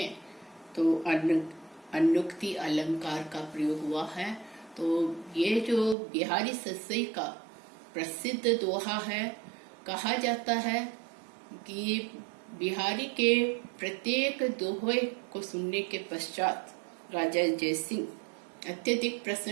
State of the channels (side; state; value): left; drops out; at 6.0 s